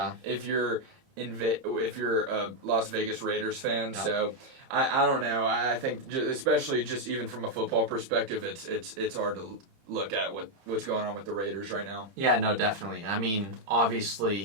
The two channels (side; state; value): left; late; 30 ms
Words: If you're a Las Vegas Raiders fan, Yep. So I don't know. I think especially just even from a football perspective, it's hard to look at what's going on with the Raiders right now. Yeah, no, definitely. I mean,